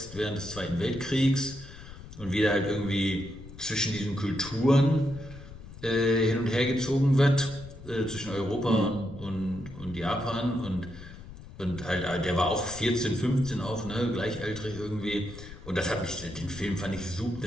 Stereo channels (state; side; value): noise; left; rumble, 15 dB below the sound